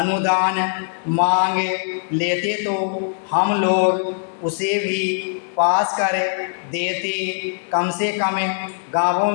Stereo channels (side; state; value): right; silent; digital silence